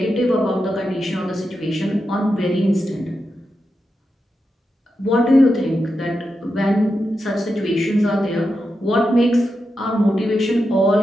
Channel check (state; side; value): normal; both; correlation 0.88